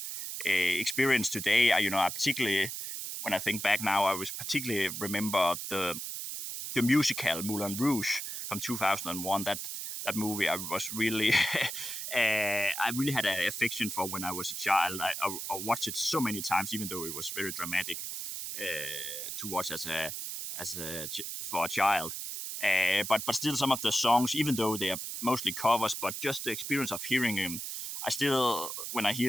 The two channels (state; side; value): noise; right; hiss, 5 dB below the sound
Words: experience today. I particularly, when I think back now, I was particularly remember the musical Moulin Rouge from 2001. That movie I was really I really had an affection for when I was a child. I watched it so many times, even though it was very dramatic to watch for a child. But still, some of the songs, even though they are mostly covers, but just the experience of hearing them, I still, when I